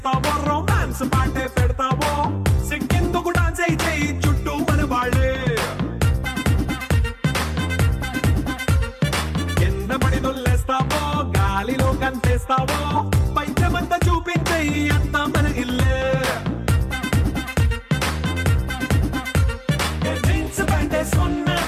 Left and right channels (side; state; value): both; identical; correlation 1.00